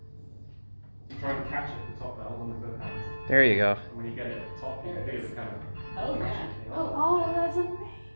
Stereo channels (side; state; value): both; inverted; correlation -1.00